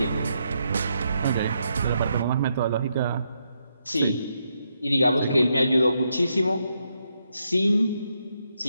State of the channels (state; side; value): inverted; both; correlation -0.80